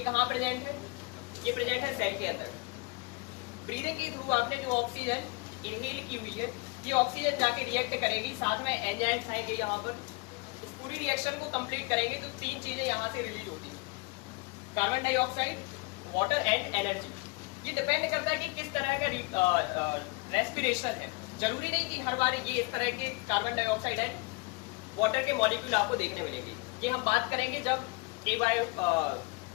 कहाँ प्रेजेंट है? ये प्रेजेंट है सेल के अंदर। ब्रीदिंग के थ्रू आपने जो ऑक्सीजन इनहेल की हुई है, ये ऑक्सीजन जाके रिएक्ट करेगी, साथ में एंजाइम्स आएंगे यहाँ पर, इस पूरी रिएक्शन को कंप्लीट करेंगे तो तीन चीजें यहाँ से रिलीज होती है, carbon dioxide, water and energy. ये डिपेंड करता है कि किस तरह का रेस्पिरेशन है। जरूरी नहीं कि हर बार ये इस तरह के कार्बन डाइऑक्साइड एंड वाटर के मॉलिक्यूल आपको देखने मिलेंगे। ये हम बात करेंगे जब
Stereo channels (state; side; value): quieter; right; 27.2 dB